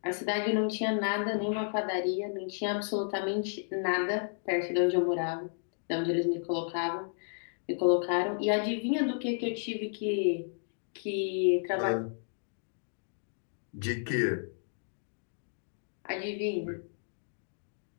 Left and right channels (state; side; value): silent; right; digital silence